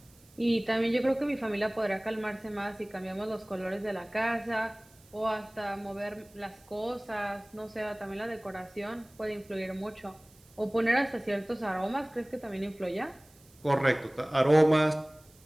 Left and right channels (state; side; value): noise; right; hiss, 28 dB below the sound